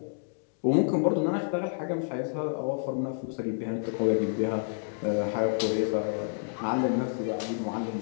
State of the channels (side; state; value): right; silent; digital silence